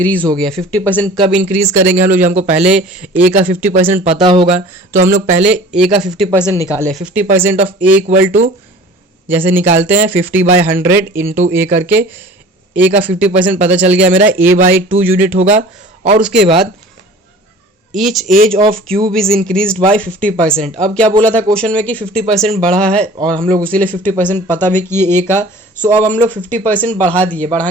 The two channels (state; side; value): normal; both; correlation 0.44